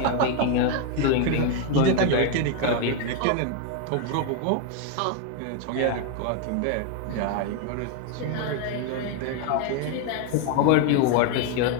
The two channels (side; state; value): both; different; correlation 0.01